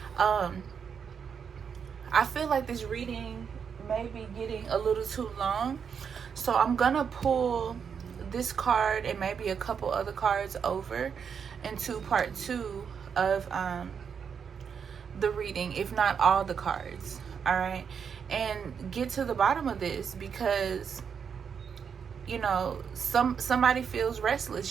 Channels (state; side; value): quieter; left; 6.9 dB